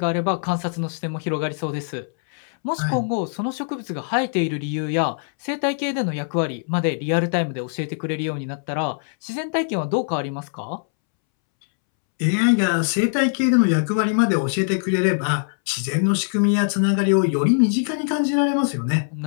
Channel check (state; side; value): silent; right; 64 dB below the other